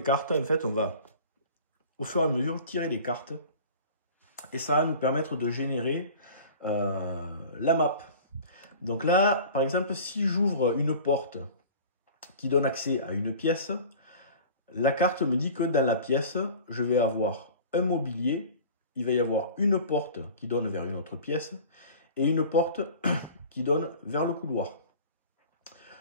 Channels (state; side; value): inverted; both; correlation -0.41